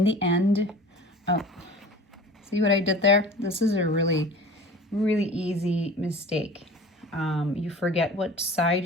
the end, oh, see what I did there? This is a really easy mistake. You forget what side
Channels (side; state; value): both; normal; correlation 0.40